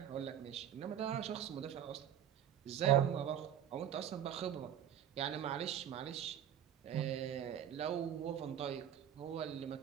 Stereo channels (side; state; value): left; quieter; 10.0 dB